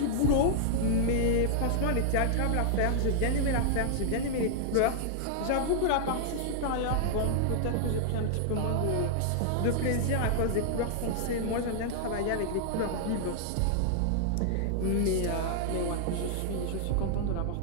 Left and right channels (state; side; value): different; both; correlation -0.01